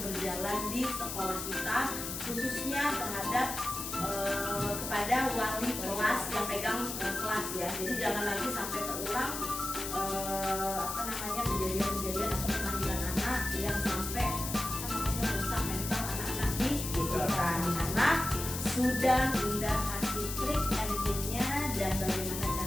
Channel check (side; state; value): left; noise; hiss, 5 dB below the sound